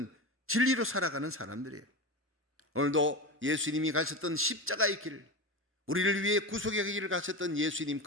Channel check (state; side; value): normal; both; correlation 0.23